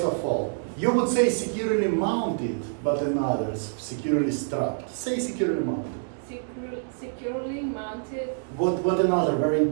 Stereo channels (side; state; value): left; silent; digital silence